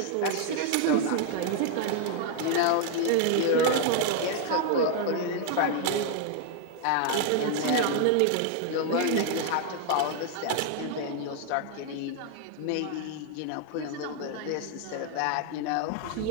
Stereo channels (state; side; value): different; both; correlation 0.00